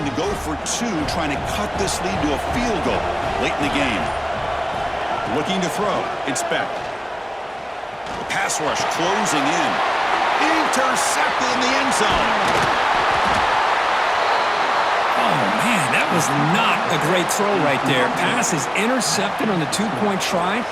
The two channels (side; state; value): both; identical; correlation 1.00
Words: to go for two, trying to cut this lead to a field goal late in the game. Looking to throw. Inspect. The pass rush closing in. Intercepted in the end zone. Oh, man, that was not a great throw right there. Pass is intercepted on the two-point try.